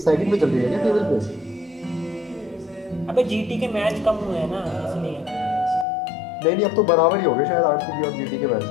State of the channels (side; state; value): right; drops out; at 5.9 s